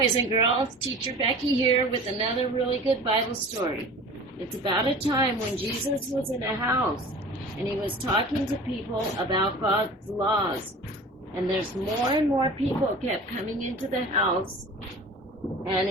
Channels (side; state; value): both; normal; correlation 0.40